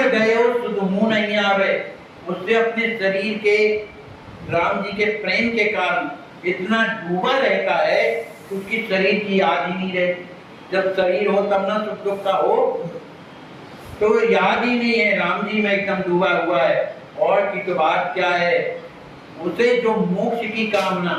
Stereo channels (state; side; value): identical; both; correlation 1.00